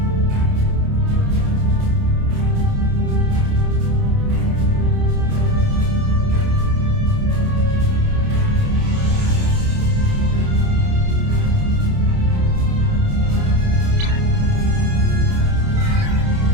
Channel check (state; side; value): late; left; 28 ms